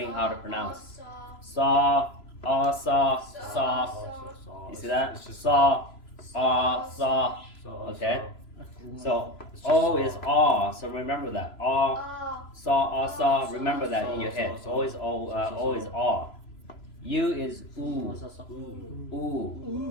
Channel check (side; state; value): right; late; 3.0 ms